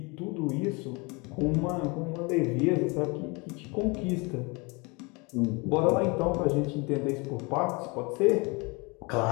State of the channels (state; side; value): quieter; right; 28.4 dB